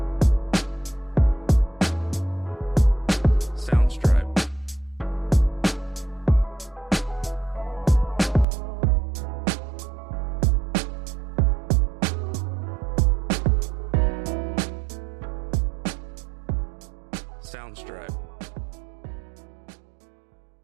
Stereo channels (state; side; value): drops out; left; at 8.5 s